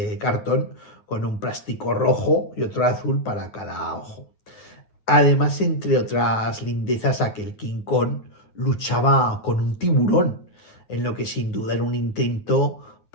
cartón con un plástico rojo y otro azul para cada ojo. Además, entre otras lindezas, aquel King Kong luchaba con un tiburón, en lo que sin duda era un intento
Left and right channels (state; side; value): late; right; 9.4 ms